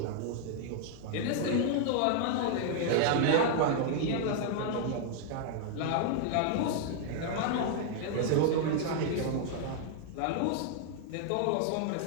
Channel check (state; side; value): different; both; correlation 0.00